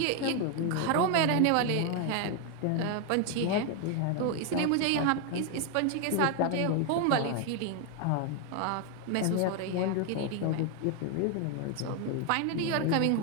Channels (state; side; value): different; both; correlation 0.01